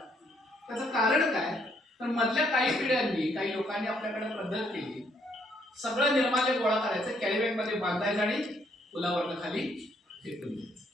त्याचं कारण काय तर मधल्या काही पिढ्यांनी काही लोकांनी आपल्याकडे पद्धत केली सगळं निर्माल्य गोळा करायचं कॅरीबॅग मध्ये बांधायचं आणि पुलावरनं खाली फेकून द्यायचं.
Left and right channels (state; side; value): normal; both; correlation 0.70